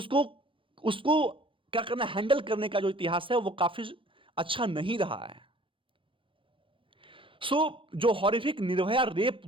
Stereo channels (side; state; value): left; late; 0.25 ms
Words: क्या करना, हैंडल करने का जो इतिहास है वो काफी अच्छा नहीं रहा है। जो हॉरिफिक निर्भया रेप